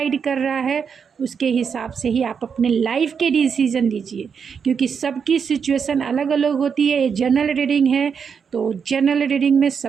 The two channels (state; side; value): quieter; left; 6.5 dB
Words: कर रहा है उसके हिसाब से ही आप अपने लाइफ के डिसीज़न लीजिए, क्योंकि सबकी सिचुएशन अलग अलग होती है। ये जनरल रीडिंग है, तो जनरल रीडिंग में